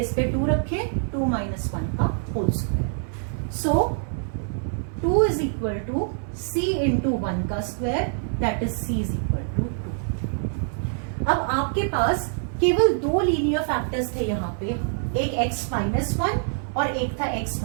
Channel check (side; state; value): left; silent; digital silence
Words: पे 2 रखे, 2 माइनस 1 का whole square. So 2 is equal to c into 1 का square, that is c is equal to 2। अब आपके पास केवल 2 लीनियर फैक्टर्स थे यहाँ पे, एक x माइनस 1 और एक था x